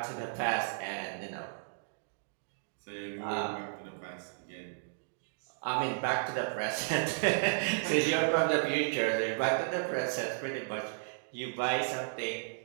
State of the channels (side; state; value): left; silent; digital silence